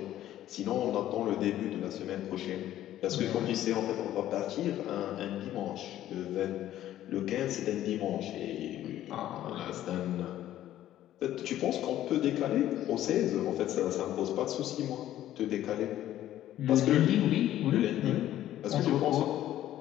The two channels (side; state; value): right; quieter; 12.9 dB